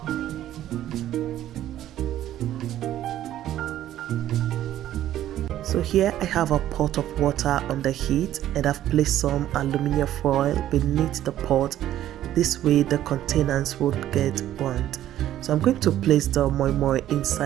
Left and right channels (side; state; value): left; quieter; 12.6 dB